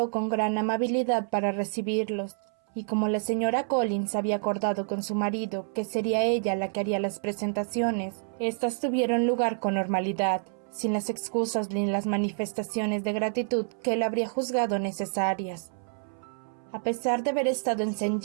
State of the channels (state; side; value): silent; left; 59 dB below the other